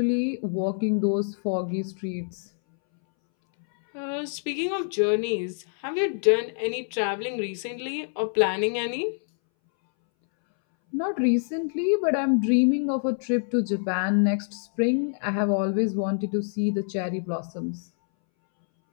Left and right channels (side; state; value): right; silent; 61 dB below the other